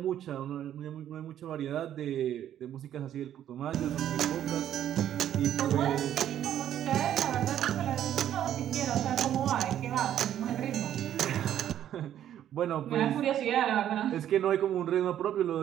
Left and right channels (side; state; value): left; quieter; 10.9 dB